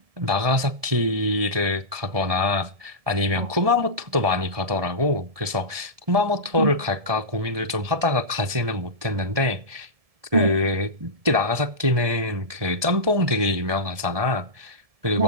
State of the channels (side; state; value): left; late; 1.7 ms